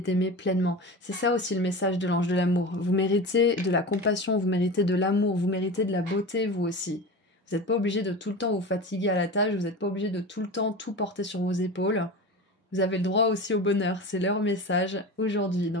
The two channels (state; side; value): normal; both; correlation 0.29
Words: pleinement. C'est ça aussi le message de l'ange de l'amour. Vous méritez de la compassion, vous méritez de l'amour, vous méritez de la beauté, vous aussi. Vous n'êtes pas obligé de tout le temps vous fatiguer à la tâche, vous n'êtes pas obligé de tout le temps tout porter sur vos épaules. Vous avez le droit aussi au bonheur, c'est leur message aujourd'hui.